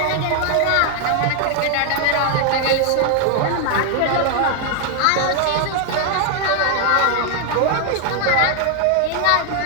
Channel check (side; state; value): both; different; correlation 0.00